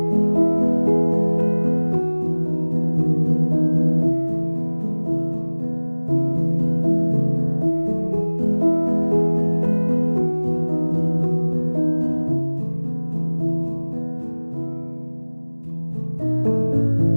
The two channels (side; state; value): both; inverted; correlation -1.00